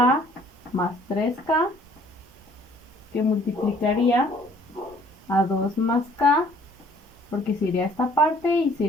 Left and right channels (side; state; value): both; normal; correlation 0.57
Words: más 3k, que multiplicaría a 2 más k, porque se iría esta parte y se